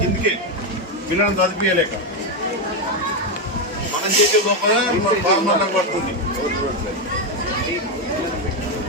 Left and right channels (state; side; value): normal; both; correlation 0.06